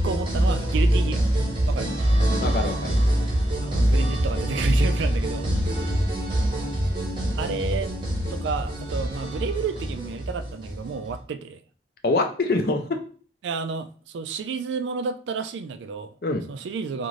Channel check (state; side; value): normal; both; correlation 0.72